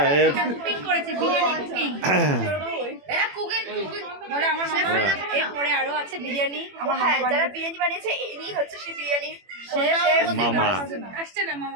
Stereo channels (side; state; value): left; late; 21 ms